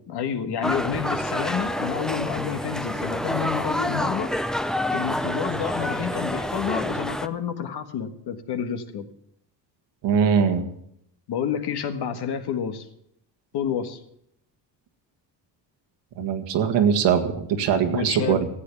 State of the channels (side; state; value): both; normal; correlation 0.25